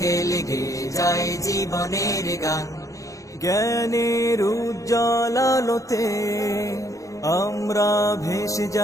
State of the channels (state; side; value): late; right; 0.16 ms